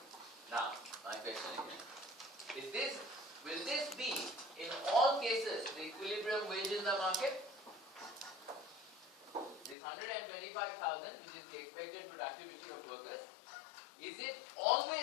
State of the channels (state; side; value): drops out; right; at 9.8 s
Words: Now, my question is will this be in all cases the equilibrium wage in the market? This 125,000, which is the expected productivity of workers, is it